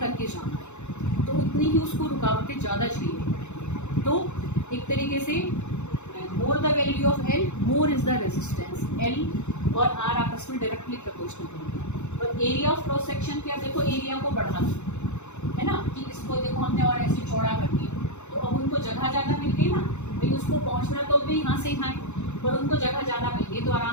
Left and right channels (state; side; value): late; right; 0.83 ms